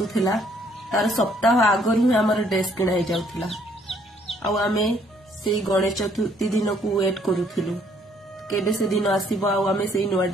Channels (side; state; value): both; normal; correlation 0.65